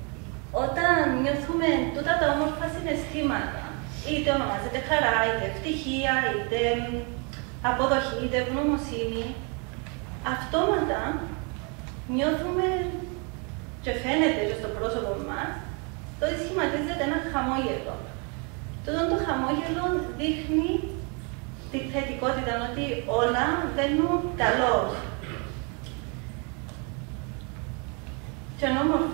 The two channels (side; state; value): left; quieter; 34.4 dB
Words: Όταν νιώθουμε τούτα τα όμορφα συναισθήματα, είτε ονομάζεται χαρά, είτε ευτυχία, είτε αποδοχή, είτε ευγνωμοσύνη, αυτόματα νιώθουμε και φαίνεται και στο πρόσωπο μας το ότι σχηματίζεται ένα χαμόγελο. Τούτο το χαμόγελο δείχνει τη θετικότητα, ότι όλα βαίνουν καλώς. Και είναι